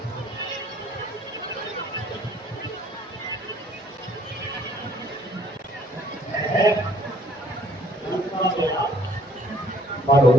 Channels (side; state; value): both; normal; correlation 0.60